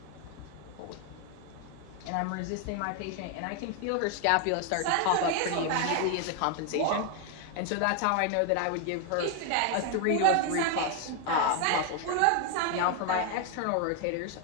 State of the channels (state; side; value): different; both; correlation 0.01